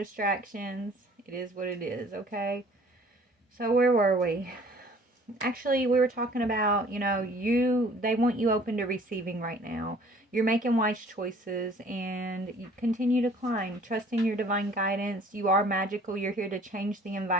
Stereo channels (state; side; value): normal; both; correlation 0.53